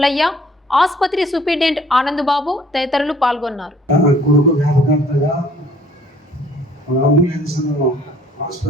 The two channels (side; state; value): both; normal; correlation 0.57